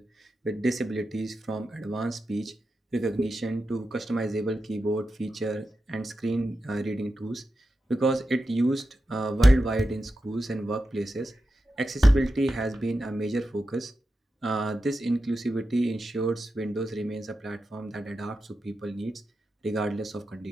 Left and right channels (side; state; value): both; normal; correlation 0.90